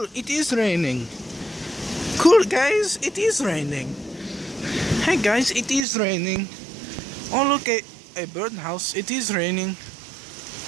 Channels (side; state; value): left; drops out; at 5.9 s